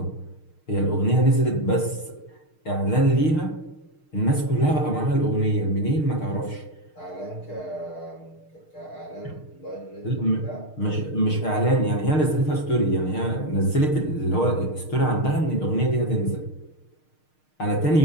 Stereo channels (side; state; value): right; late; 6.5 ms